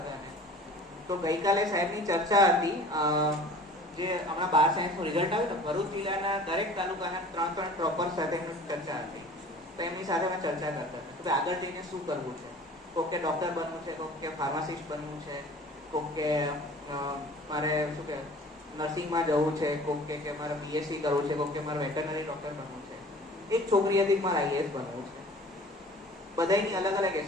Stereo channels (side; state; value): both; normal; correlation 0.45